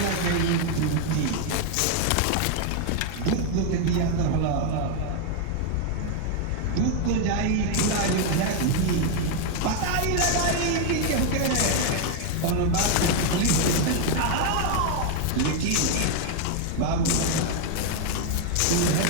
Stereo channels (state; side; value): different; both; correlation 0.01